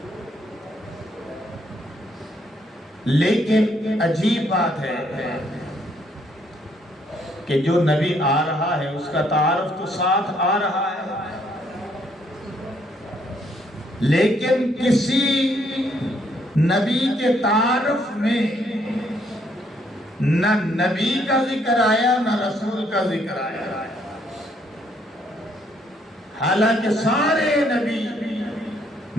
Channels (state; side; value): normal; both; correlation 0.70